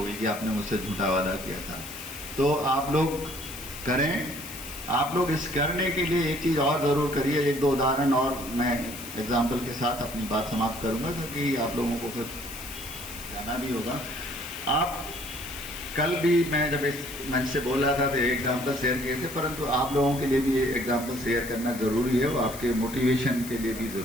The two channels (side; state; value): left; noise; hiss, 12 dB below the sound